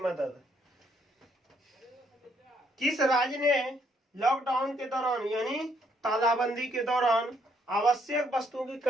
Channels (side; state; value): both; normal; correlation 0.70